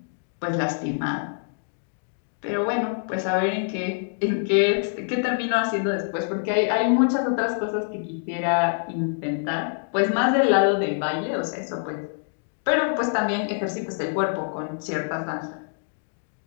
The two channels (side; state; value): right; silent; digital silence